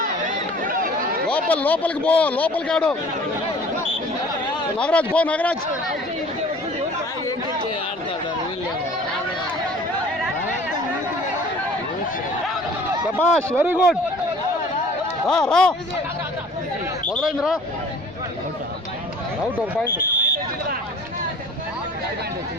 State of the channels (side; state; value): both; normal; correlation 0.49